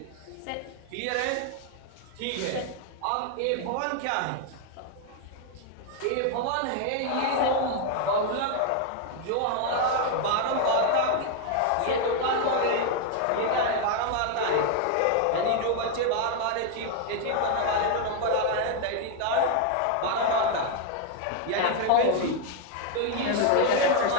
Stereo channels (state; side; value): different; both; correlation 0.00